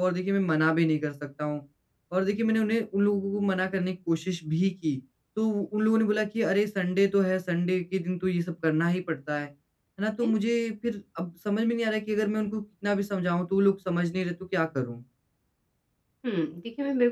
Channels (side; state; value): both; identical; correlation 1.00